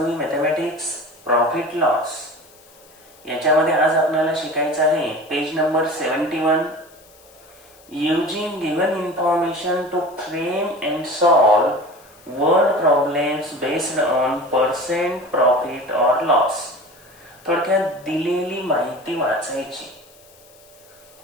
mathematics profit loss याच्यामध्ये आज आपल्याला शिकायचं आहे page number 71. Using given information to frame and solve word problems based on percent profit or loss. थोडक्यात दिलेली माहिती वाचायची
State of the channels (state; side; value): noise; left; hiss, 26 dB below the sound